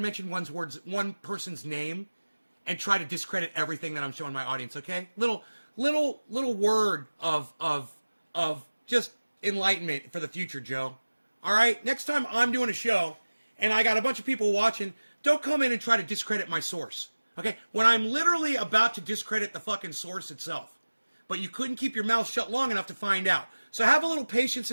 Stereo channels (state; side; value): inverted; both; correlation -1.00